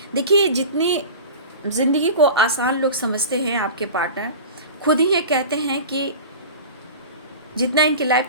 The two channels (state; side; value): inverted; both; correlation -0.34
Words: देखिए जितनी ज़िंदगी को आसान लोग समझते हैं आपके पार्टनर, खुद ही ये कहते हैं कि जितना इनकी लाइफ